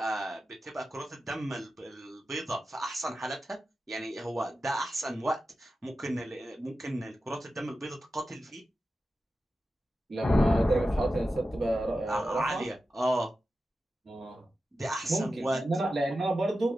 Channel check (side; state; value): both; normal; correlation 0.92